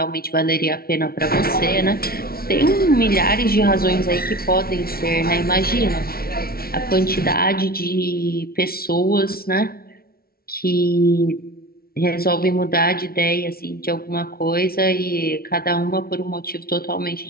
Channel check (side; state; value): right; late; 0.44 ms